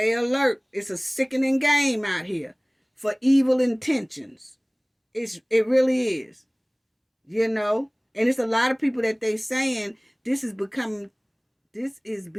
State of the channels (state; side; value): identical; both; correlation 1.00